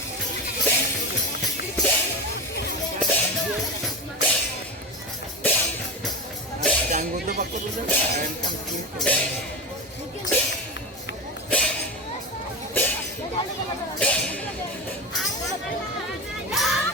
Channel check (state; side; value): normal; both; correlation 0.21